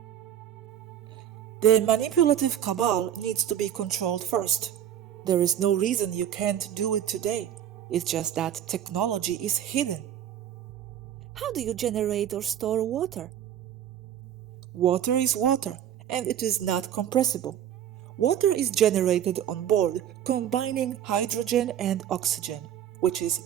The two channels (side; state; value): left; quieter; 10.3 dB